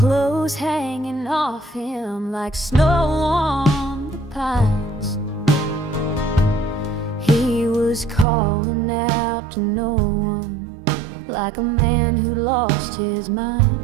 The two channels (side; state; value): left; drops out; at 8.2 s